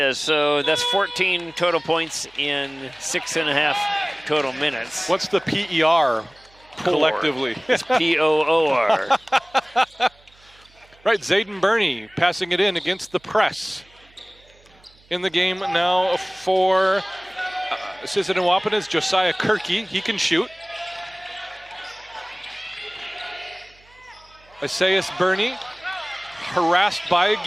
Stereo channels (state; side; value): noise; right; hum, 29 dB below the sound